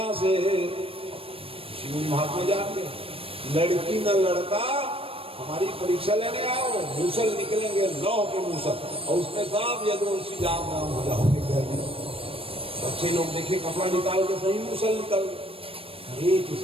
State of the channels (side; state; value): left; late; 0.27 ms